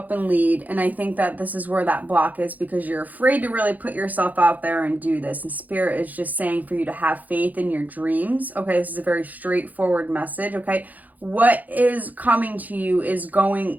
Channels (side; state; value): left; late; 0.081 ms